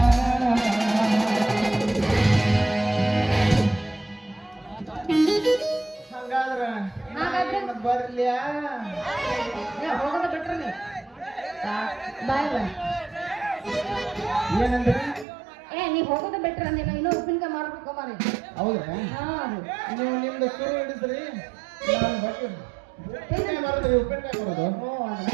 ಹಂಗಾದ್ರ ಹಾಗಾದ್ರೆ ಬರ್ಲಿಯಾ ಏ ಹೋಗೋದ ಬಿಟ್ರೆ ನೀ ಬಾಯ್ ಬಾಯ್ ಏನಂದ್ರೆ ಏ ನೀ ಹೋಗೋದು ಬೆಟ್ರ ನೀನು ಇನ್ನೂ ಉಪ್ಪಿನಕಾಯಿ ಮಾರ್ಬೇಕು ಮಾರಿ. ಹೌದಾ ಹಾ ನೀವು ನಿಮ್ದು ಶುರು ಹಿಡಿದ್ರಿ ನಾನು ಬರ್ತೀನಿ ಉಪ್ಪಿನಕಾಯಿ ಮಾರೋದ್ರಿ ಉಪ್ಪಿನಕಾಯಿ ಕೊಡೋದು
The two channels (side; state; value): left; drops out; at 15.2 s